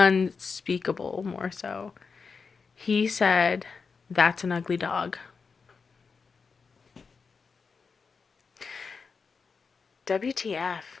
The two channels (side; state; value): right; quieter; 5.1 dB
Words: more so. He said, "That's an ugly dog." WTF?